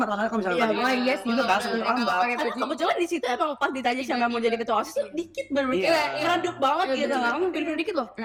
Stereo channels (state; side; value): identical; both; correlation 1.00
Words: lah kalau misalnya tadi iya sih. gitu kan sebelum terlambat. Kebetulan di situ emang pas ditanya siapa mau jadi ketua OSIS tuh dikit bener Iya. meredup banget gitu. Kamu bener-bener dikit loh.